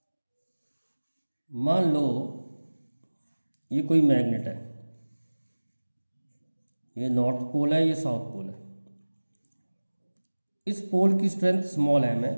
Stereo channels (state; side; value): inverted; both; correlation -1.00